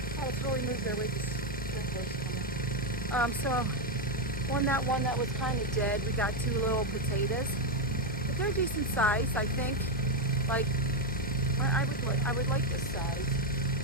Oh, it's really moved their way. So on that one that was kind of dead, we got two little potatoes, but they're decent size, I think. Like, I would like this size.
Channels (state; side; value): normal; both; correlation 0.05